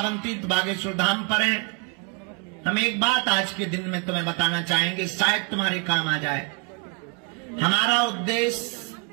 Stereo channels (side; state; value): left; quieter; 33.1 dB